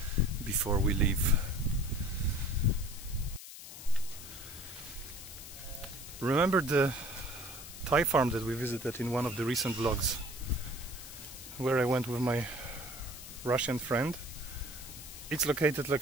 before we leave. Remember the Thai farm that we visited in one of the recent vlogs, where I went with my Russian friend? It's located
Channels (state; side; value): noise; left; hiss, 13 dB below the sound